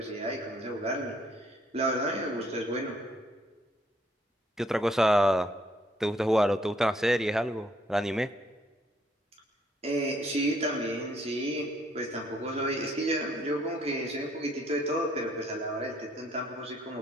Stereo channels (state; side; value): normal; both; correlation 0.67